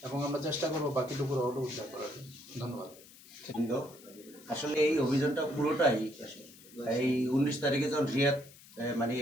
এবং আমরা চেষ্টা করবো বাকিটুকু রডও উদ্ধার করার। ধন্যবাদ। আসলে এই অভিযানটা পুরোটাই এই 19 তারিখে যখন রিয়াদ মানে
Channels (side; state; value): left; noise; hiss, 21 dB below the sound